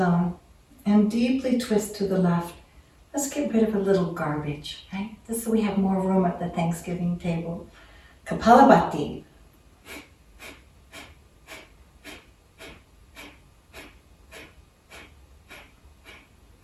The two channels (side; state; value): both; identical; correlation 1.00